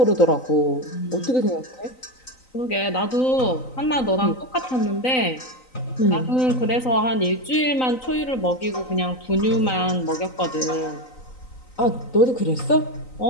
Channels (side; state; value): right; late; 3.9 ms